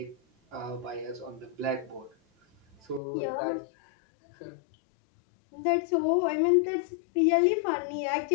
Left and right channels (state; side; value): drops out; right; at 3.0 s